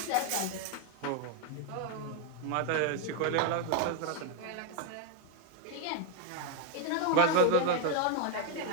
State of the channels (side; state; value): both; different; correlation 0.01